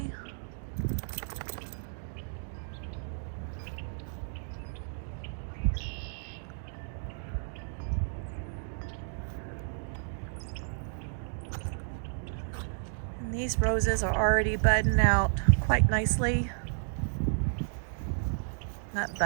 And these roses are already budding out quite nicely. Not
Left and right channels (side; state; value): left; silent; digital silence